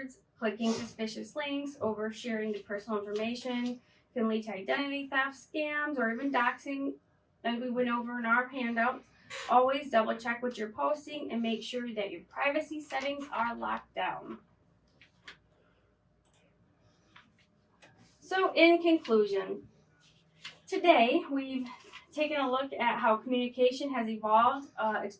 clicking suspicious links, oversharing the personal information can lead to identity theft, scams, or even doxing, as we went over in our handouts. Always double check what you're posting and make sure that your privacy settings are locked down. So in conclusion, today we've taken a look at how communication has evolved,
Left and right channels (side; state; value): both; identical; correlation 1.00